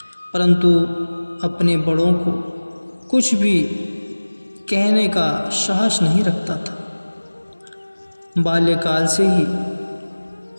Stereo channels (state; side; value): inverted; both; correlation -1.00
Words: परंतु अपने बड़ों को कुछ भी कहने का साहस नहीं रखता था। बाल्यकाल से ही